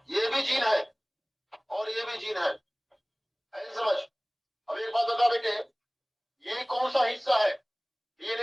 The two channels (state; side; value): identical; both; correlation 1.00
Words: ये भी जीन है, और ये भी जीन है। ऐसे समझ। अब एक बात बता बेटे, ये कौन सा हिस्सा है?